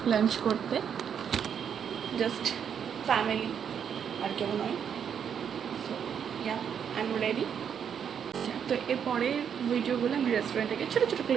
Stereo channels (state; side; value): quieter; left; 7.9 dB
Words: lunch করতে, just family আর কেউ নয়। So yeah I am ready. তো এরপরের ভিডিওগুলো আমি রেস্টুরেন্টে গিয়ে ছোটো ছোটো